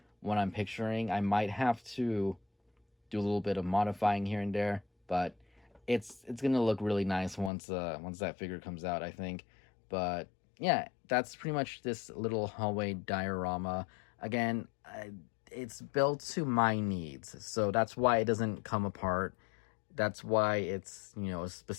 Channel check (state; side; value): drops out; right; at 7.5 s